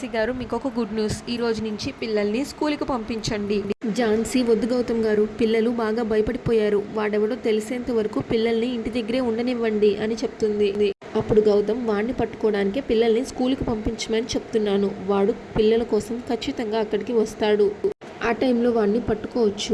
గారు మీకు ఒక గుడ్ న్యూస్, ఈ రోజు నుంచి పిల్లల్ని స్కూల్కి పంపించండి. ఝాన్సీ, వద్దు గౌతమ్ గారు, పిల్లలు బాగా భయపడిపోయారు, వాడెవడో తెలిసేంత వరకు పిల్లల్ని ఇంటి దగ్గరే ఉండనివ్వండి అని చెప్తుంది. అప్పుడు గౌతమ్, వాడిని పట్టుకోవడానికే పిల్లల్ని స్కూల్కి పంపించమని చెప్తున్నాను, వాడు పిల్లల కోసం ఖచ్చితంగా అక్కడికి వస్తాడు, ఆ టైంలో వాడిని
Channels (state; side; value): identical; both; correlation 1.00